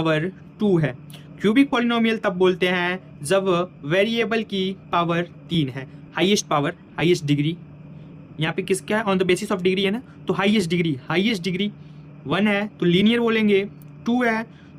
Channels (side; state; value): both; identical; correlation 1.00